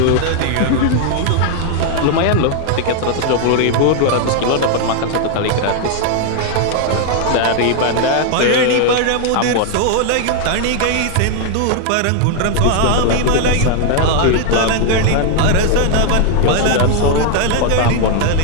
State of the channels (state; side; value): different; both; correlation 0.00